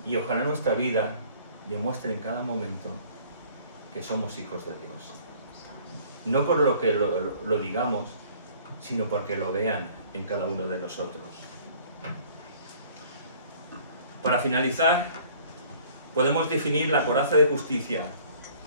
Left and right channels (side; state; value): both; inverted; correlation -0.53